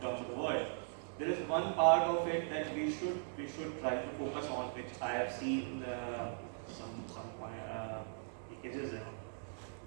terms of the world, there is one part of it that we should try to focus on, which I have seen some leakages in.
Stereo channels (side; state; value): left; silent; 51 dB below the other